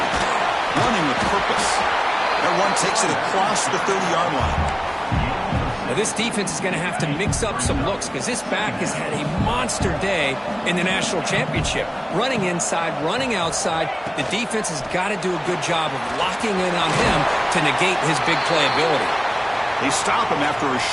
Running with purpose. That one takes it across the 30-yard line. Now, this defense is going to have to mix up some looks because this back has had a monster day in the national championship. Running inside, running outside. The defense has got to do a good job of locking in on him to negate his big play ability. They stop him after a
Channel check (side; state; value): both; identical; correlation 1.00